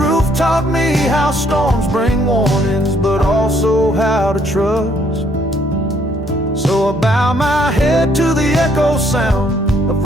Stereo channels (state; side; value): normal; both; correlation 0.67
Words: taught me how storms bring warnings, but also how to trust. So I bow my head to the echo sound of